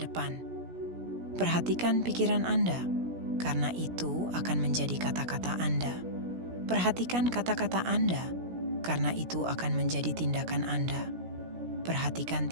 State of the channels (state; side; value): late; left; 17 ms